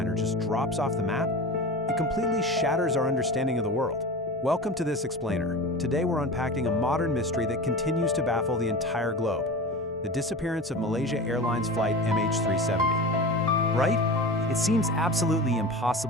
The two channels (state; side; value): normal; both; correlation 0.31